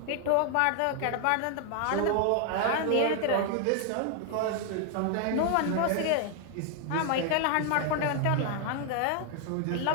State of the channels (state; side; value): different; both; correlation 0.00